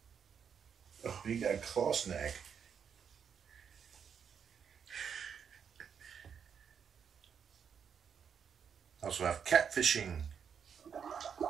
Oh, you got a claw snag. Also have catfishing.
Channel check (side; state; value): left; quieter; 7.2 dB